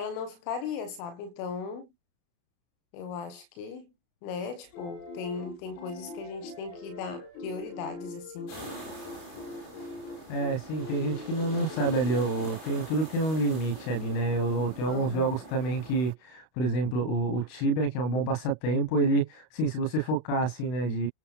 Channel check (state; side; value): late; right; 33 ms